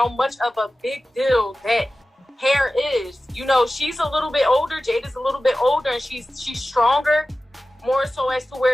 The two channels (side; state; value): both; normal; correlation 0.96